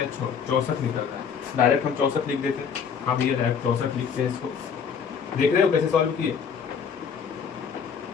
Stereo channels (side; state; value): right; quieter; 6.8 dB